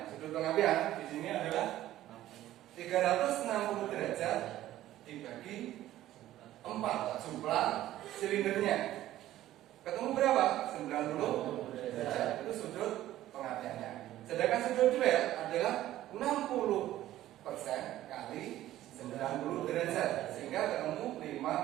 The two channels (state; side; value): quieter; left; 14.0 dB